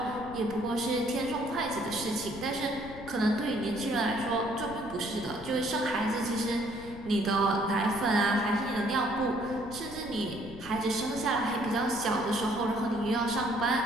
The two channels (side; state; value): left; noise; rumble, 16 dB below the sound